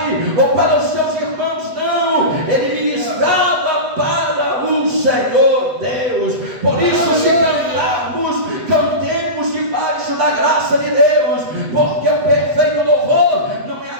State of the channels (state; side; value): late; left; 8.0 ms